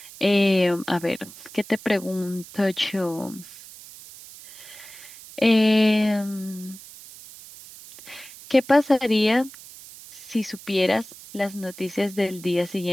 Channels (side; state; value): right; noise; hiss, 17 dB below the sound